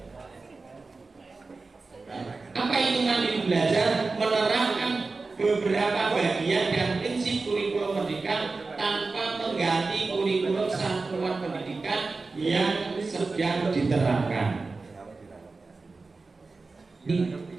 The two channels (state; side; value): quieter; left; 3.9 dB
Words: Apa itu mandiri belajar? Menerapkan beberapa bagian dan prinsip kurikulum merdeka tanpa mengganti kurikulum satuan pendidikan yang sedang diterapkan. Ini